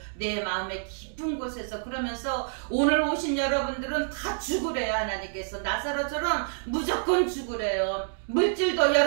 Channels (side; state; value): left; silent; digital silence